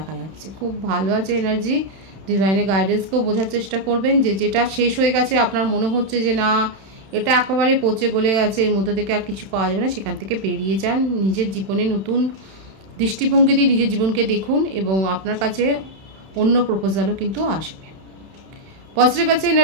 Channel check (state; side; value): late; left; 31 ms